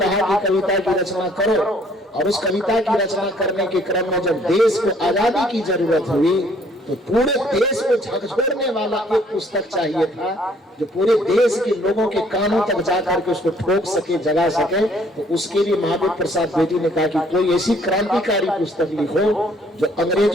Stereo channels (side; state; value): both; normal; correlation 0.62